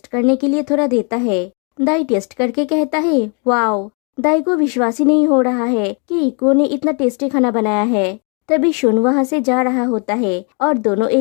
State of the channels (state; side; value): quieter; right; 37.1 dB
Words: करने के लिए थोड़ा देता है। दाई टेस्ट करके कहता है वाओ। दाई को विश्वास ही नहीं हो रहा है कि इको ने इतना टेस्टी खाना बनाया है। तभी शुन वहाँ से जा रहा होता है और दोनों